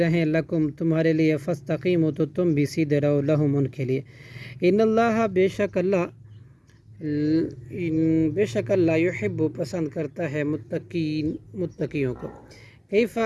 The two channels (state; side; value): identical; both; correlation 1.00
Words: لکم تمہارے لیے فاستقیموا تو تم بھی سیدھے رہو لہم ان کے لیے ان اللہ بے شک اللہ یحب پسند کرتا ہے متقیوں کو